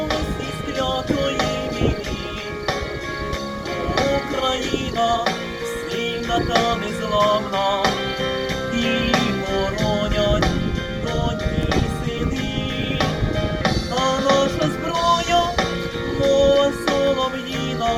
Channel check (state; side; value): identical; both; correlation 1.00